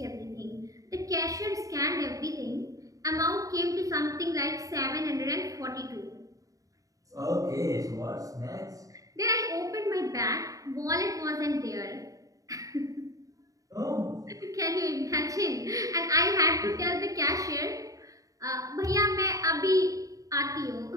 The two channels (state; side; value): late; left; 0.16 ms